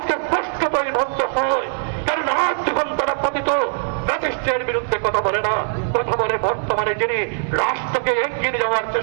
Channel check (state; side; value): silent; left; digital silence